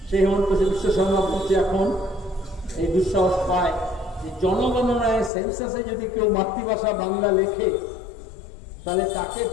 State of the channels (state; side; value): drops out; right; at 5.3 s